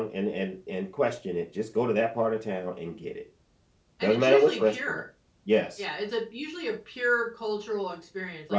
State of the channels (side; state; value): both; identical; correlation 1.00